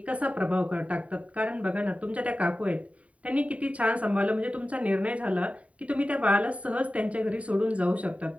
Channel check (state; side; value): late; left; 0.066 ms